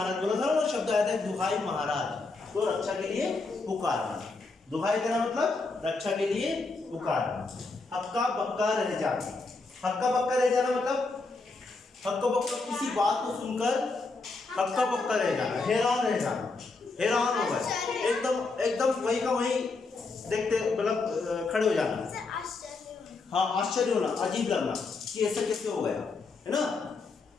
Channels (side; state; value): right; quieter; 3.8 dB